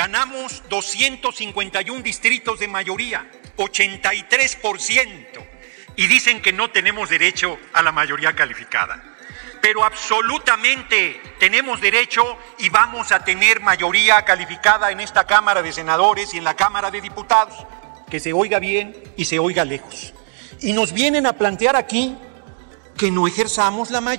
251 distritos de mayoría, 83%. Y dicen que no tenemos derecho a la mayoría calificada. Pero absolutamente tenemos derecho y vamos a tener mayoría calificada en esta Cámara de Senadores y en la Cámara de Diputados. Que se oiga bien y se oiga lejos. Y nos vienen a plantear aquí que no ejerzamos la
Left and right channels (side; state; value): left; silent; 57 dB below the other